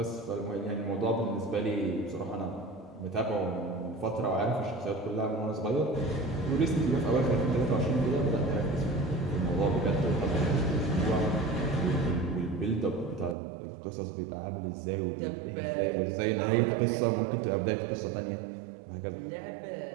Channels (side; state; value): left; drops out; at 13.4 s